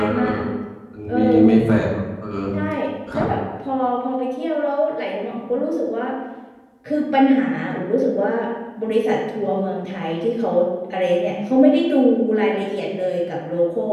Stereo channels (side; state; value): both; identical; correlation 1.00